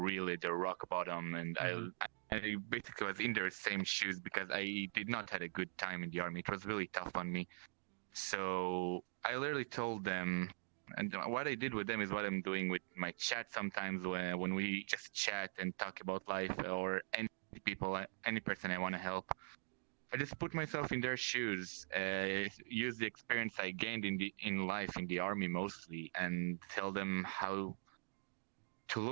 the rock bottom, and Mm-hmm. I basically was in their same shoes because I did not had a good time in the army. It was really tough on me. So I literally told them, and what I did with them is what I'm doing with my chat sometimes when we just chat and talk about life or any people, any person I want to help. I just put myself in their shoes, use the experience I gained in life in the army mostly, and tell them how to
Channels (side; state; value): left; silent; digital silence